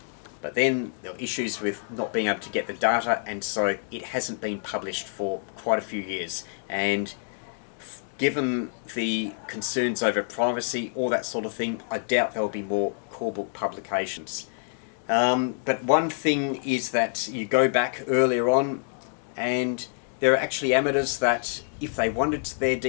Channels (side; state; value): right; silent; digital silence